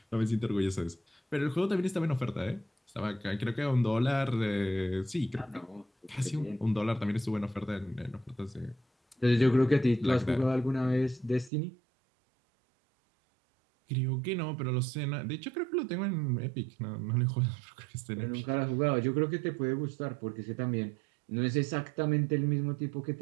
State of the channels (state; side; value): drops out; left; at 11.5 s